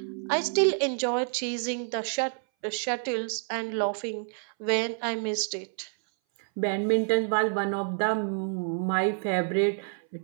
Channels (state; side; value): silent; left; 59 dB below the other